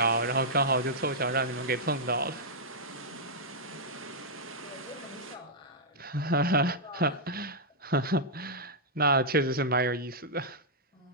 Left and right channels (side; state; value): both; normal; correlation -0.09